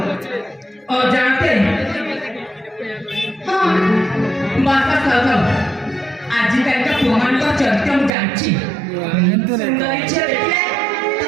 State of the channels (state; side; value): drops out; left; at 8.1 s